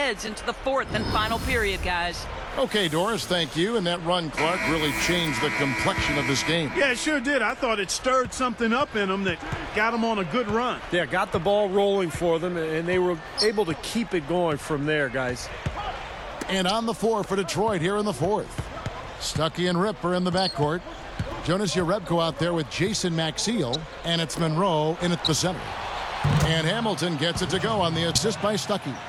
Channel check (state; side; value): identical; both; correlation 1.00